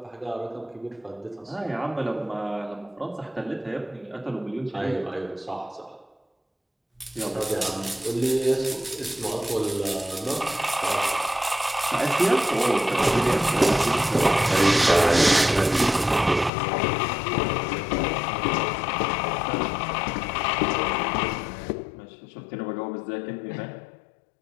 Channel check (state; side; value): drops out; right; at 16.5 s